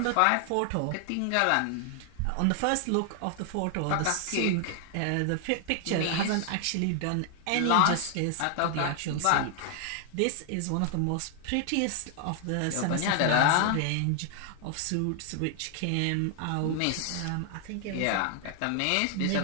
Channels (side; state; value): both; different; correlation 0.00